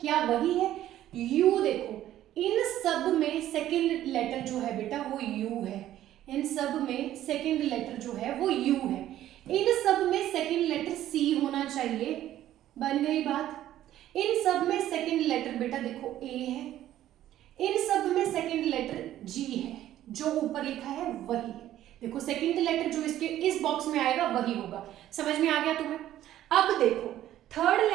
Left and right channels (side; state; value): left; quieter; 12.8 dB